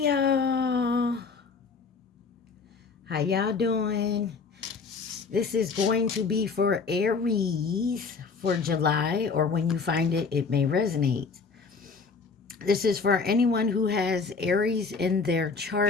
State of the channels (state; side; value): quieter; right; 4.8 dB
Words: y'all, how y'all doing? This is going to be for Aries for July, or when you find it, it may resonate. This is for anyone who has Aries in their